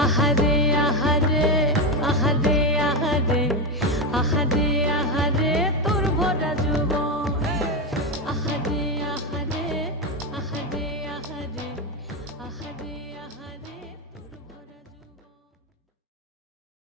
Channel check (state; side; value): normal; both; correlation 0.11